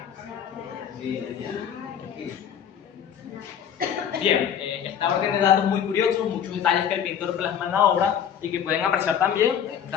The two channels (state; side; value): quieter; right; 8.7 dB